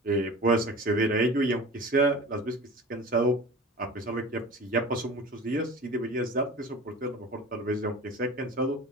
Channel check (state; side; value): normal; both; correlation 0.37